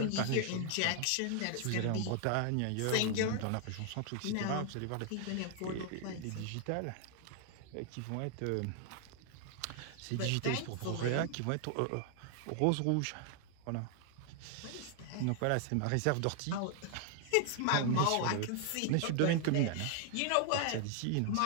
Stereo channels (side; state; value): both; different; correlation 0.00